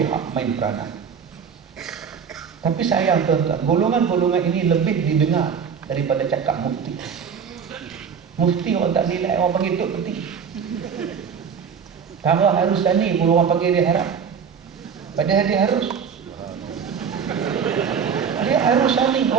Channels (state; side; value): quieter; left; 6.8 dB